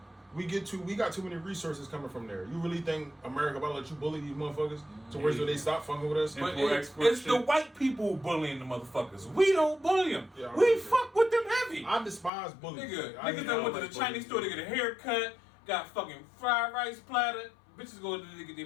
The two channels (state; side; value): drops out; right; at 12.3 s